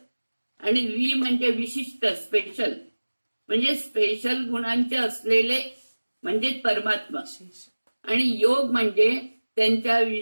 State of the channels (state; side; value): inverted; both; correlation -1.00